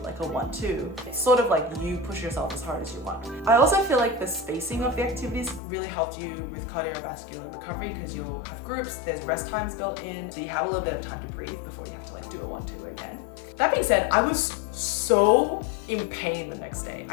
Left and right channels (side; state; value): right; drops out; at 5.6 s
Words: like a 1, 2. It's sort of like you push yourself as hard as you want. I also feel like the spacing of the activities really helped you with cardiovascular recovery because you'll have groups, there's rest times built in, so you have a little bit of time to breathe before you have to like do a 1, 2 again. That being said, I was so in pain the next day.